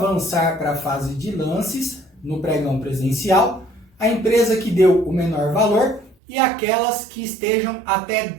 para a fase de lances no pregão presencial a empresa que deu o menor valor e aquelas que estejam até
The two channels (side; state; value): left; drops out; at 6.2 s